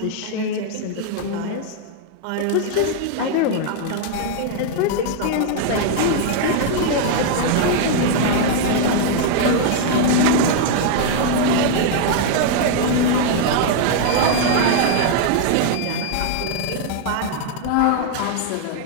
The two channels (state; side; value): different; both; correlation 0.00